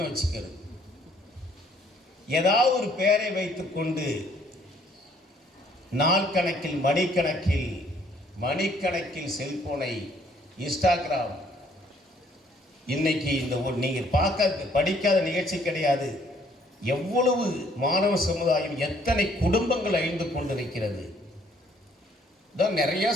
வச்சுக்கிறது. ஏதாவது ஒரு பெயரை வைத்துக்கொண்டு நாள் கணக்கில், மணிக்கணக்கில் செல்போனை, இன்ஸ்டாகிராம். இன்னைக்கு இந்த நீங்கள் படிக்காத நிகழ்ச்சி கிடையாது. எவ்வளவு மாணவ சமுதாயம், எத்தனை குடும்பங்கள் அழிந்து கொண்டிருக்கிறது. தான் நிறைய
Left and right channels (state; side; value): normal; both; correlation 0.63